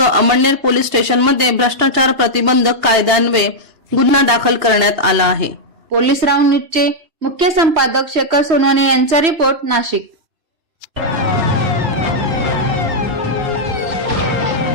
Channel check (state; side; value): late; left; 2.8 ms